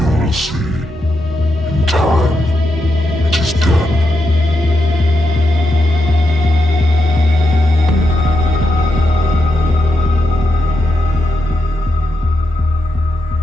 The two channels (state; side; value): normal; both; correlation 0.84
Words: will see. In time, it is done.